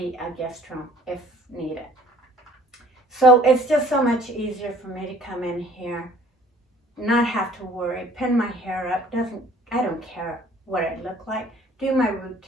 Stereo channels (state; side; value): normal; both; correlation 0.55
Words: a guest room if needed. So it's just so much easier for me to come in here, not have to worry, pin my hair up, I don't care what I look like, do my